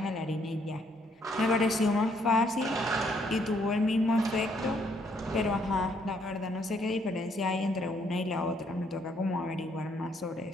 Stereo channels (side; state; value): both; normal; correlation 0.69